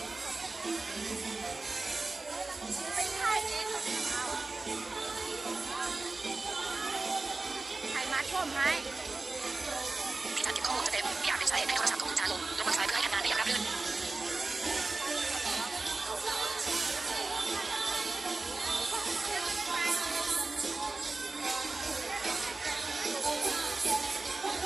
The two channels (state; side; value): quieter; left; 3.5 dB